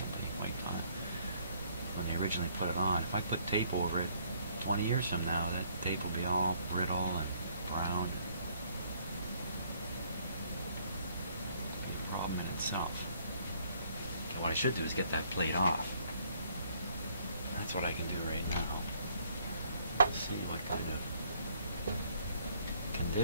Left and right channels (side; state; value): both; inverted; correlation -0.64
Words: wiped on when they originally put it on. If I put tape over it 20 years from now, that tape will be all brittle and brown. It'll be a problem in itself. And what I should do is get that plate off. That's what I can do right now. Let's see what kind of